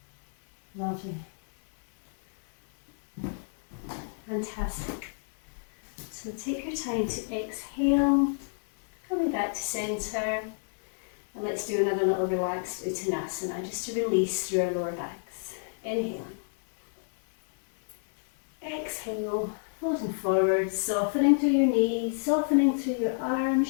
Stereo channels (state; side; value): silent; right; 57 dB below the other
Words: Lovely. Fantastic. So take your time to exhale, coming back to centre, and let's do another little relaxed Uttanasana just to release through our lower backs. Inhale. Exhale, folding forward, softening through your knees, softening through your arms,